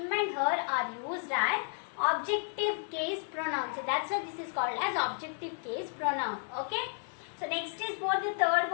and her are used as objective case pronoun. So that's why this is called as objective case pronoun. Okay. So next is what the third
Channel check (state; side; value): silent; right; 56 dB below the other